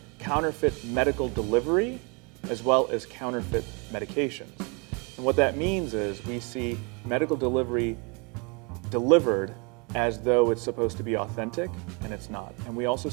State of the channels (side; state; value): left; quieter; 31.7 dB